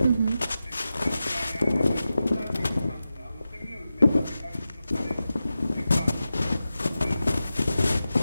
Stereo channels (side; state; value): both; inverted; correlation -0.92